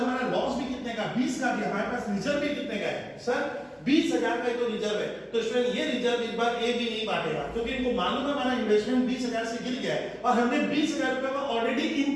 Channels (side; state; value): both; identical; correlation 1.00